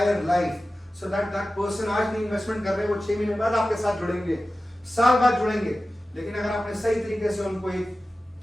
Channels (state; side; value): normal; both; correlation 0.95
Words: life, so that that person आज नहीं इन्वेस्टमेंट कर रहे, वो 6 महीने बाद आपके साथ जुड़ेंगे, साल बाद जुड़ेंगे। लेकिन अगर आपने सही तरीके से उनको एक